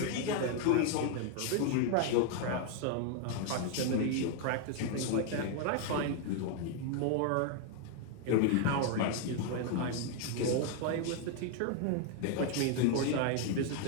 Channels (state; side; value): different; both; correlation 0.00